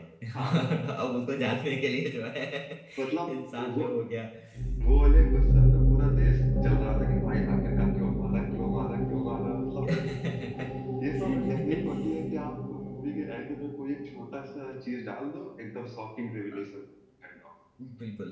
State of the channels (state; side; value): identical; both; correlation 1.00